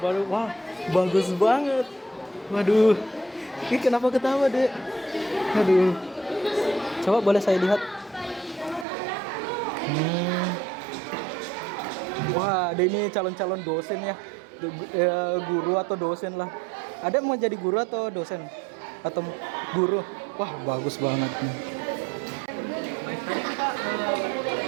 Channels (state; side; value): drops out; left; at 8.8 s